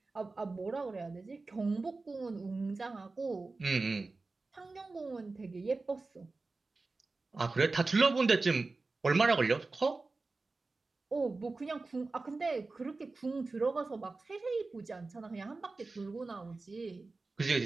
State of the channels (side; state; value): left; quieter; 3.6 dB